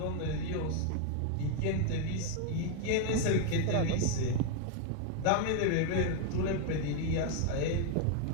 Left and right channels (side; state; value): both; different; correlation 0.00